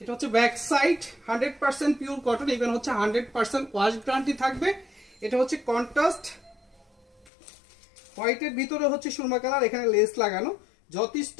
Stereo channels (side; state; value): right; drops out; at 7.3 s